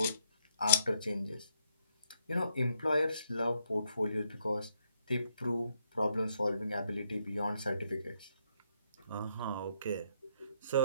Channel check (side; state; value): both; inverted; correlation -0.74